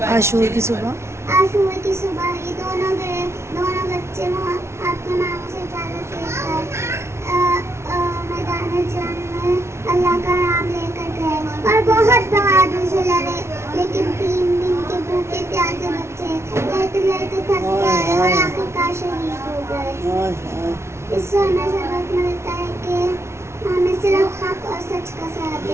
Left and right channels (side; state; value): left; late; 0.13 ms